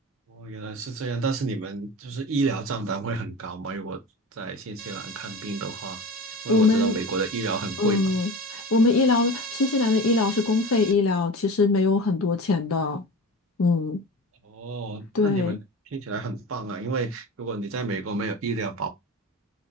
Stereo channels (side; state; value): both; normal; correlation 0.32